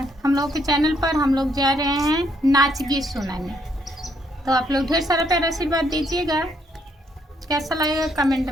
हम लोग के चैनल पर हम लोग जा रहे हैं नाच गीत सुनाने, तो आप लोग ढेर सारा प्यारा आशीर्वाद दीजिएगा। कैसा लगेगा कमेंट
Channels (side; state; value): both; normal; correlation 0.71